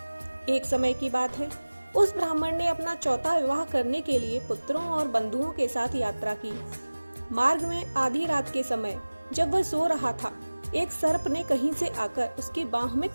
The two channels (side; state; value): both; inverted; correlation -1.00